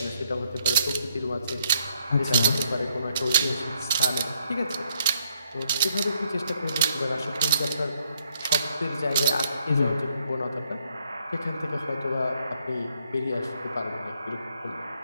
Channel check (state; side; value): inverted; both; correlation -0.72